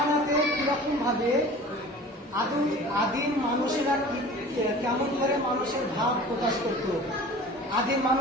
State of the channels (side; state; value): both; normal; correlation 0.42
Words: কিরকম ভাবে আদিম মানুষেরা কেমন করে মানুষের ভাব প্রকাশ করত? আদিম